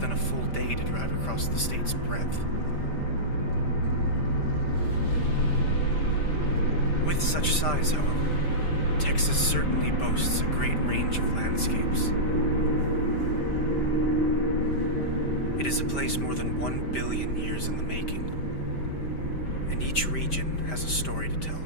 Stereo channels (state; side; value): late; right; 5.1 ms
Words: a full day to drive across the state's breadth. With such size, however, Texas certainly boasts a great range of landscapes. It is a place more than 1 billion years in the making, and each region has a story to tell.